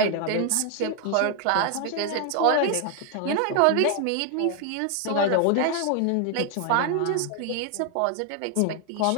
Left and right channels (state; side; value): different; both; correlation 0.00